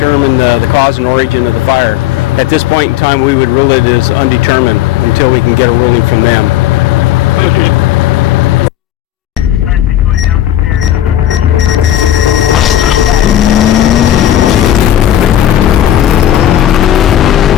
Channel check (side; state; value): right; quieter; 12.1 dB